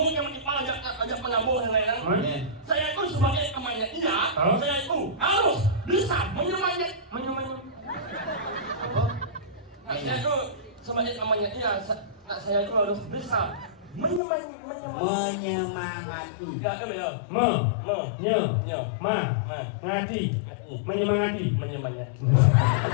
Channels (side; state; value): right; drops out; at 14.2 s